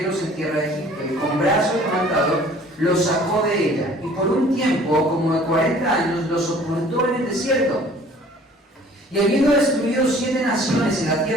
en tierra de Egipto, y con brazo levantado los sacó de ella, y por un tiempo como de 40 años los ocultó en el desierto. Y habiendo destruido 7 naciones en la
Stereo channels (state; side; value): normal; both; correlation 0.52